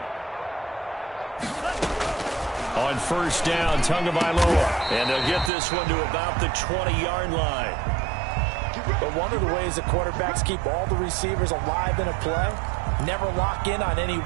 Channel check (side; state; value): left; drops out; at 5.5 s